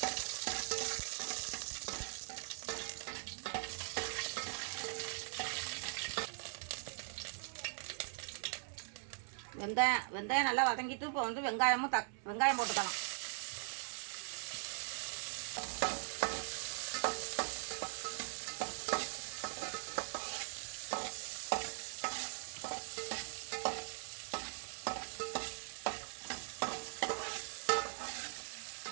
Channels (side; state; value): left; silent; 50 dB below the other